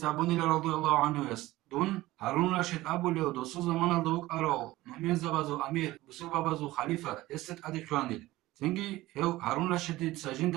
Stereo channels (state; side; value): quieter; left; 17.6 dB